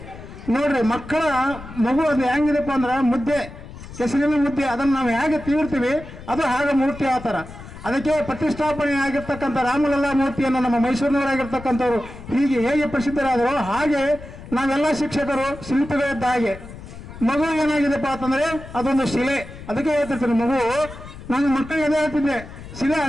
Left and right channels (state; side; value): noise; left; rumble, 14 dB below the sound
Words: ನೋಡ್ರಿ, ಮಕ್ಕಳ ಮಗು ಅದು ಹೆಂಗಿದೆಪ್ಪ ಅಂದ್ರೆ ಮುದ್ದೆ, ಕೆಸರಿನ ಮುದ್ದೆ, ಅದನ್ನು ನಾವು ಹೇಗೆ ತೀರ್ತೀವಿ ಅದು ಹಾಗೆ ಮೂರ್ತಿ ಆ ಥರ. ಅದಕ್ಕೆ ಪ್ರತಿಷ್ಠಾಪನೆ ಆಗಿರ್ತಕ್ಕಂಥ ರಾಮಲಲ್ಲಾ ಮೂರ್ತಿಯನ್ನು ನಮ್ಮ ಮೈಸೂರಿನವರಾಗಿರ್ತಕ್ಕಂಥವ್ರು ಹೀಗೆ ಹೇಗೆ ಪ್ರಸಿದ್ಧರಾದರೂ ಹಾಗೆ ನಾವೆಲ್ಲ ಶಿಕ್ಷಕರು ಶಿಲ್ಪಿಗಳಿದ್ದ ಹಾಗೆ. ಮಗು ಏನಾಗಿದೆಪ್ಪ ಅಂತಂದ್ರೆ ಅದೊಂದು ಶಿಲೆ. ಅದಕ್ಕೆ ಹೇಳ್ತಿರ್ತೀನಿ, ಮಗು ನಾನು ಮಕ್ಕಳಿಗೆ ಅದೇ ಹೇಳ್ತಿದ್ದೆ, ಶಿಲೆ